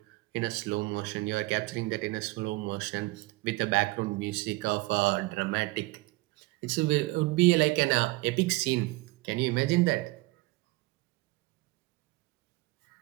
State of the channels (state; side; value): quieter; left; 21.7 dB